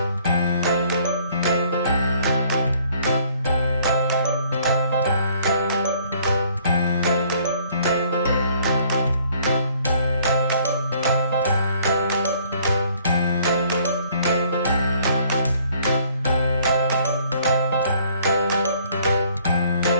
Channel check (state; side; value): inverted; both; correlation -0.60